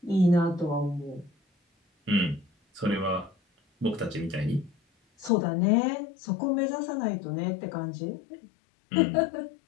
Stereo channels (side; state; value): right; drops out; at 5.3 s